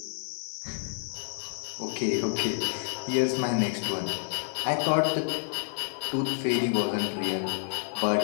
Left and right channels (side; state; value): right; silent; digital silence